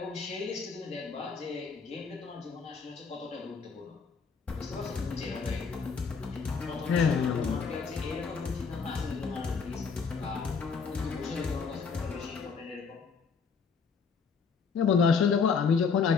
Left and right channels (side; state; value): right; quieter; 5.5 dB